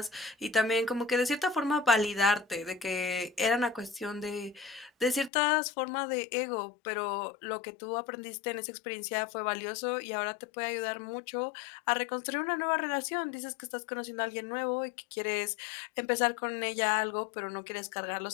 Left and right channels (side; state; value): right; drops out; at 5.3 s